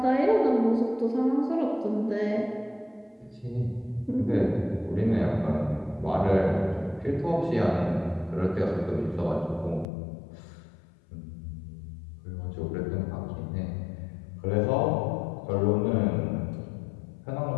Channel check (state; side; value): drops out; right; at 9.9 s